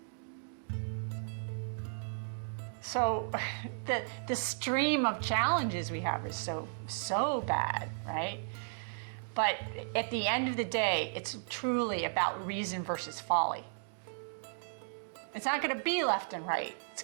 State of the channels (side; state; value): left; silent; digital silence